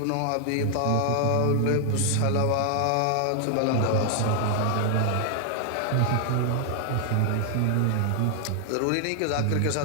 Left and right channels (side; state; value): both; different; correlation 0.00